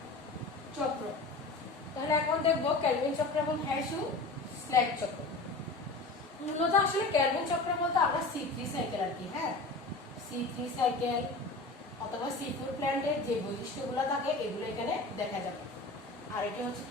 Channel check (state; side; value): quieter; right; 3.3 dB